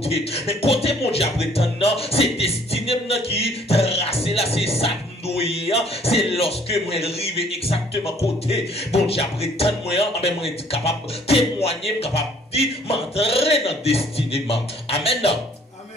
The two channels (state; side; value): normal; both; correlation 0.58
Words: Mais côté mon Dieu a prétend c'est destiné qui tracé là, c'est ça. C'est lorsque moi arrive exactement côté bon Dieu après tant moi moi capable témoigner capable dire m'entrer dans destinée. Amen.